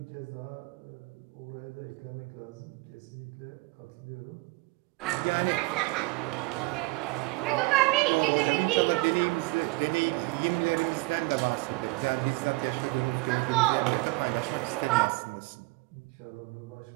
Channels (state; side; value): quieter; left; 24.4 dB